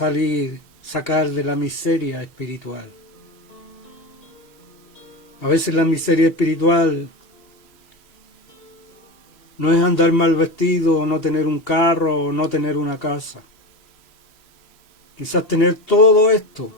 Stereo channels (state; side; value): late; right; 3.1 ms